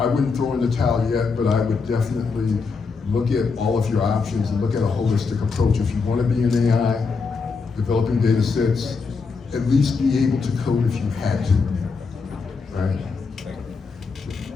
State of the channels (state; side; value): quieter; right; 4.8 dB